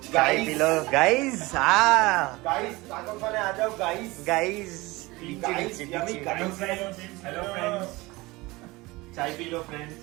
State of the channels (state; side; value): quieter; left; 21.8 dB